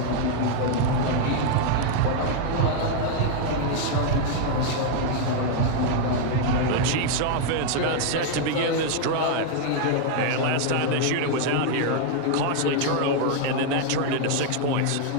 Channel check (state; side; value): different; both; correlation 0.00